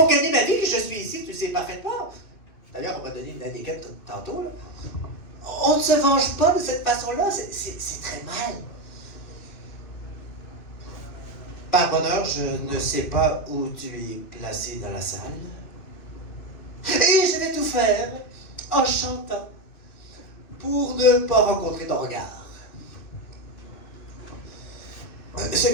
gagner ma vie que je suis ici, tu sais parfaitement. D'ailleurs, on m'a donné une indiquette tantôt, là. On ne se venge pas de cette façon-là, c'est très mal. Par bonheur, je ne sais pas où tu es placé dans la salle. Et je vais tout faire en chantant pour ne pas rencontrer ton regard. Ce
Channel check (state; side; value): late; right; 2.6 ms